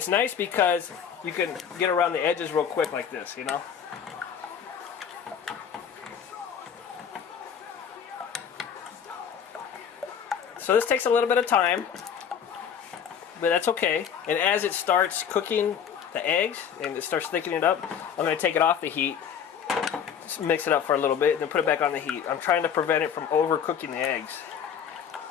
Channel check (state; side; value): quieter; right; 7.9 dB